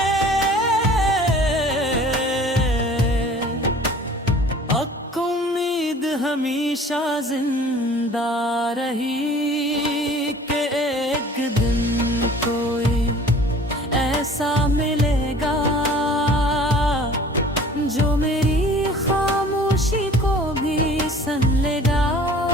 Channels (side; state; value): both; normal; correlation 0.48